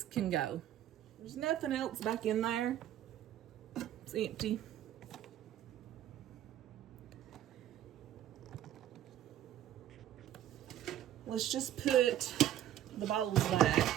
can go. There's nothing else back in there. It's empty. Let's just put the bowls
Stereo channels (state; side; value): quieter; left; 11.9 dB